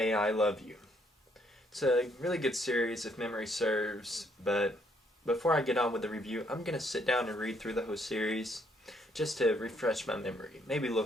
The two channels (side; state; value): both; normal; correlation 0.69